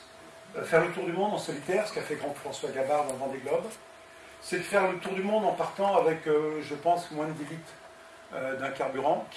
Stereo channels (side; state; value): both; identical; correlation 1.00